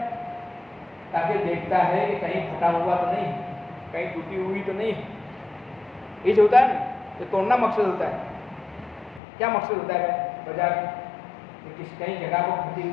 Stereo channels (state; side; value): drops out; right; at 9.2 s